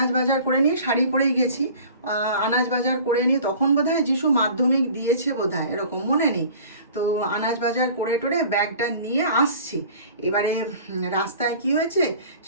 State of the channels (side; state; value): both; inverted; correlation -0.45